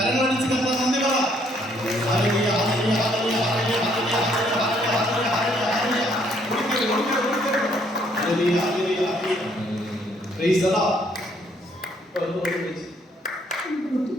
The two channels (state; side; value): normal; both; correlation 0.67